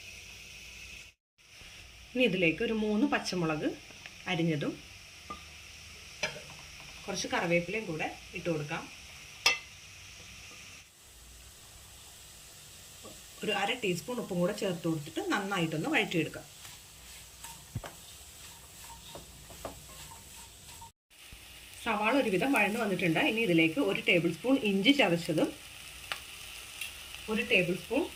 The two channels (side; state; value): both; identical; correlation 1.00